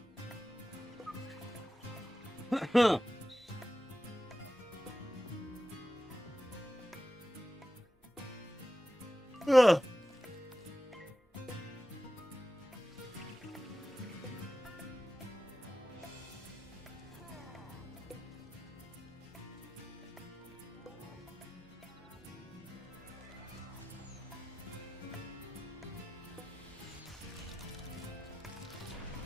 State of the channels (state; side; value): normal; both; correlation 0.93